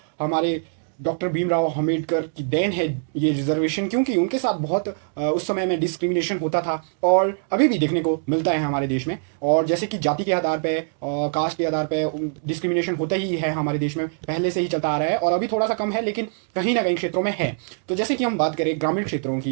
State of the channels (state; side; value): silent; left; 63 dB below the other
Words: हमारे डॉक्टर भीमराव अंबेडकर की देन है ये रिजर्वेशन, क्योंकि उनके साथ बहुत उस समय में डिस्क्रिमिनेशन होता था और अभी भी देखने को मिलता है हमारे देश में। और जैसे कि जाति के आधार पे और कास्ट के आधार पे डिस्क्रिमिनेशन होता ही है हमारे देश में, पहले से ही चलता आ रहा है और अभी थोड़ा सा कम है, लेकिन कहीं ना कहीं क्षेत्रों में है। तो जैसे कि हम बात करें ग्रामीण क्षेत्रों